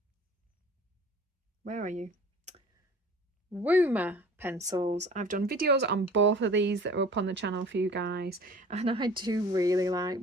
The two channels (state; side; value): normal; both; correlation 0.45